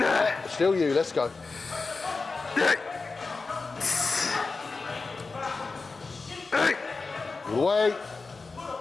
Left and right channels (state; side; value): quieter; right; 4.1 dB